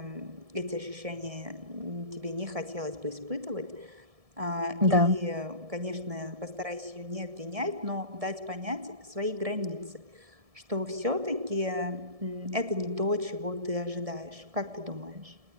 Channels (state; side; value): late; left; 1.7 ms